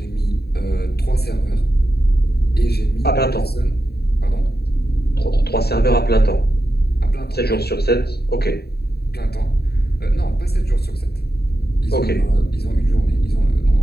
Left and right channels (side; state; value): right; late; 0.47 ms